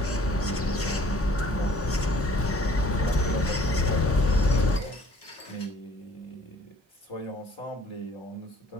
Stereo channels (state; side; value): normal; both; correlation 0.56